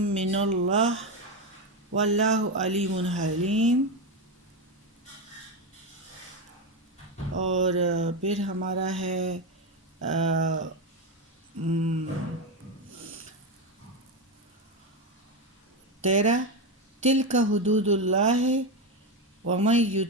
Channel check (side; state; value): both; normal; correlation 0.12